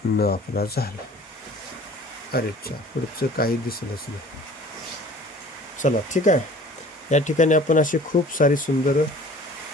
न आपला झाला. अरे चा पुढचं काही दिसलंच नाही. चला ठीक आहे. या ठिकाणी आपण असे खूप सारी सुंदर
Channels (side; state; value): both; normal; correlation 0.47